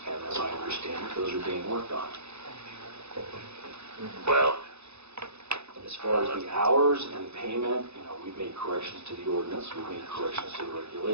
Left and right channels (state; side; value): late; left; 0.80 ms